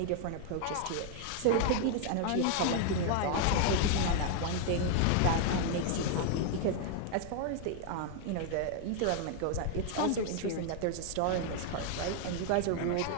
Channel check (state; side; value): different; both; correlation 0.00